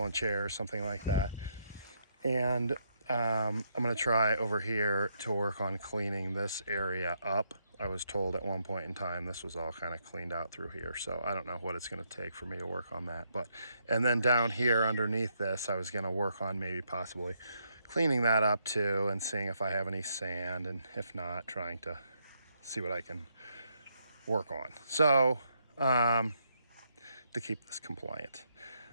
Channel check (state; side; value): inverted; both; correlation -0.76